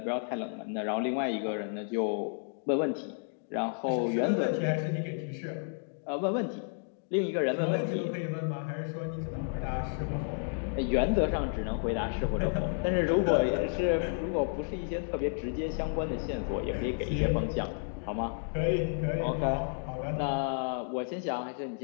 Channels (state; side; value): silent; right; 57 dB below the other